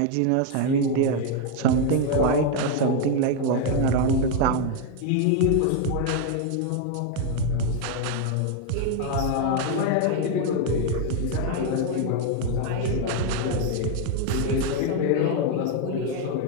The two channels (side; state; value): both; different; correlation 0.01